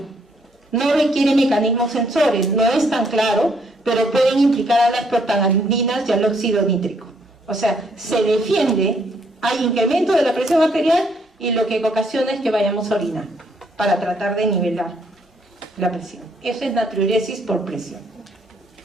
No requiere mecanismos sensores, no es tan claro, pero pueden implicar a las prostaglandinas y al óxido nítrico. O sea, se defiende, hay incremento de la presión arterial, y lo que ocasiona es que vayamos a orinar para tratar de nivelar la presión. Eso es natriuresis por presión.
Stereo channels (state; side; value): normal; both; correlation 0.70